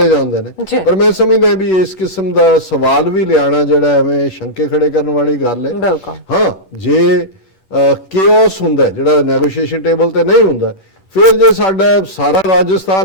ਜਾਂਦੇ ਨੇ, ਪਰ ਮੈਂ ਸਮਝਦਾ ਵੀ ਇਸ ਕਿਸਮ ਦਾ ਸਵਾਲ ਵੀ ਲਿਆਣਾ ਜਿਹੜਾ ਐਵੇਂ ਸ਼ੰਕੇ ਖੜੇ ਕਰਨ ਵਾਲੀ ਗੱਲ ਹੈ। ਹਾਂ, ਜੇ ਕੇਓਸ ਹੁੰਦਾ ਜਿਹੜਾ ਨੈਗੋਸ਼ੀਏਸ਼ਨ ਟੇਬਲ ਤੇ ਨਹੀਂ ਹੁੰਦਾ, ਫਿਰ ਜੇ ਸਾਡਾ ਸਾਰਾ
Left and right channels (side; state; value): right; late; 8.3 ms